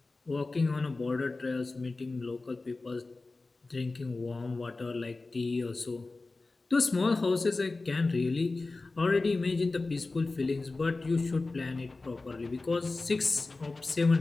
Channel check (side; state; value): right; quieter; 3.5 dB